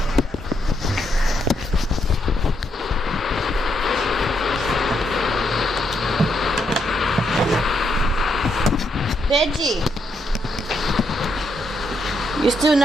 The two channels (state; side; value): normal; both; correlation 0.78